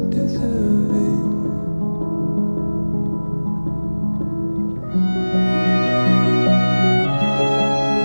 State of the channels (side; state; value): both; inverted; correlation -1.00